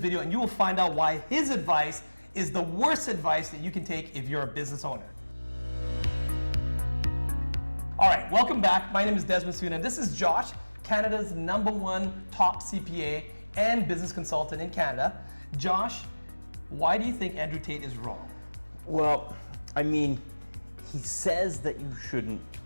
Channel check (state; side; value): inverted; both; correlation -1.00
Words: video and you will find out why his advice is the worst advice that you can take if you're a business owner. All right, welcome back. My name is Desmond Soon and this is Josh, Canada's #1 top CPA and business consultant in Canada. Josh, why do you think Andrew Tate is wrong? Well, I mean, he says that you shouldn't